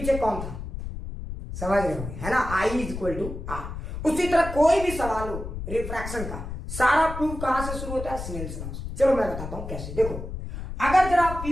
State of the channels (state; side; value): noise; left; rumble, 8 dB below the sound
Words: कौन था? समझ रहे हो, है ना? I is equal to R. उसी तरह कोई भी सवाल हो रिफ्रैक्शन का, सारा प्रूफ कहां से शुरू होता है? स्नेल्स लॉ से। चलो मैं बताता हूं कैसे। देखो, अगर जरा आप